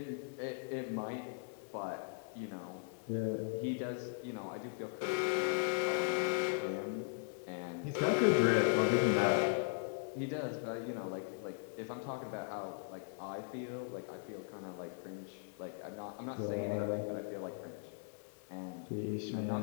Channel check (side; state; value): right; silent; digital silence